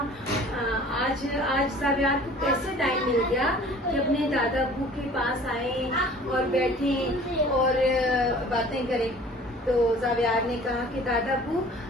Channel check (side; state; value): both; normal; correlation 0.48